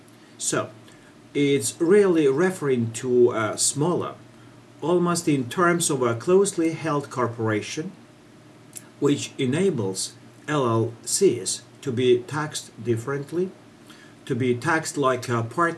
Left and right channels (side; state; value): both; identical; correlation 1.00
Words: So it's really referring to a smaller, almost in terms of a closely held corporation, which enables LLCs to be taxed differently, to be taxed like a